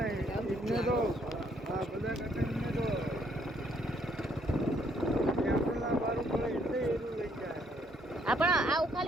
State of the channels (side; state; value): both; normal; correlation 0.69